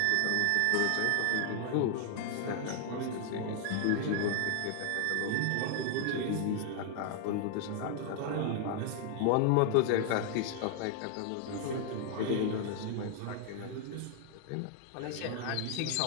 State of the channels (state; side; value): different; both; correlation 0.00